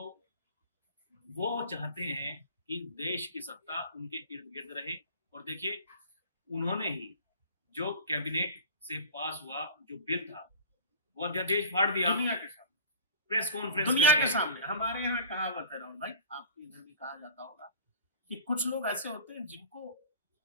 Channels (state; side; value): inverted; both; correlation -0.41